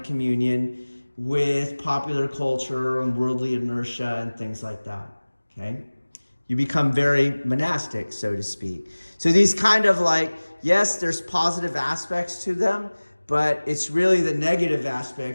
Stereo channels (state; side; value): inverted; both; correlation -1.00